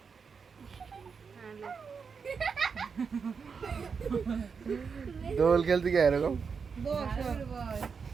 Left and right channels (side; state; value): left; quieter; 5.7 dB